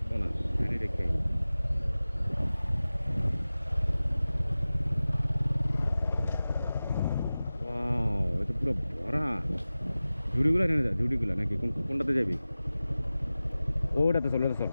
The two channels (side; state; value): both; inverted; correlation -0.97